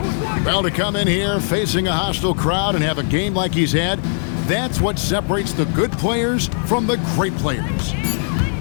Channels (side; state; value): right; silent; 66 dB below the other